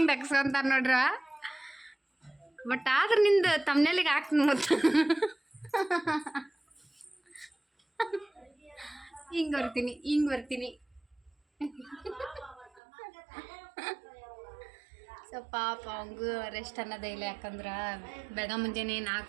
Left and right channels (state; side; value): drops out; left; at 12.8 s